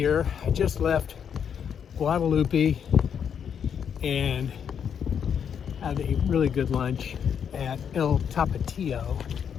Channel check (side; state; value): right; quieter; 7.8 dB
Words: I just left Guadalupe and had a really good lunch at El Tapatio,